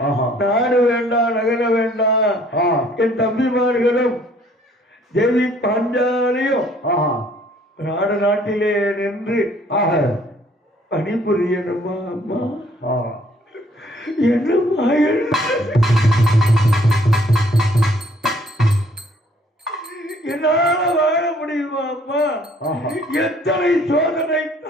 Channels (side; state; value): both; normal; correlation 0.61